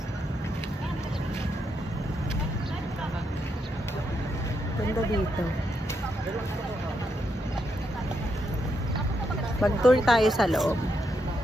Ganda dito. Mag-tour tayo sa loob.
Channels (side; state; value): both; normal; correlation 0.81